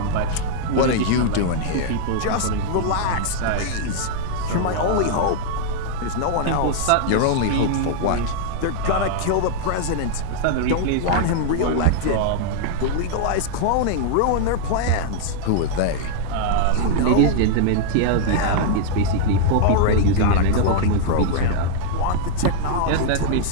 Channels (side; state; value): both; different; correlation -0.01